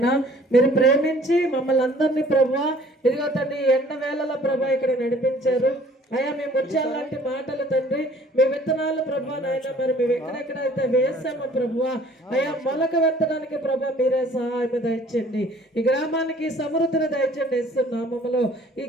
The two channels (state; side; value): normal; both; correlation 0.54